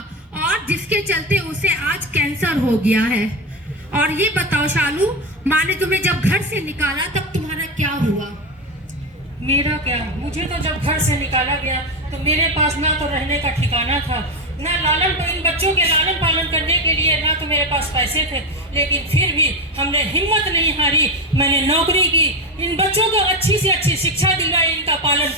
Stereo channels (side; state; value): both; normal; correlation 0.14